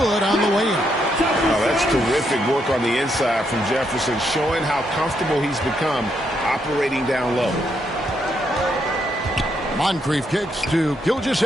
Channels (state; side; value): normal; both; correlation 0.77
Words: on the way in. Oh, that's terrific work on the inside from Jefferson, showing how comfortable he's become operating down low. Moncrief kicks to